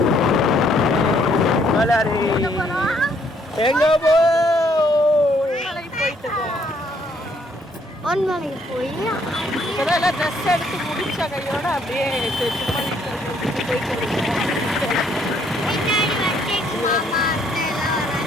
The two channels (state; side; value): normal; both; correlation 0.67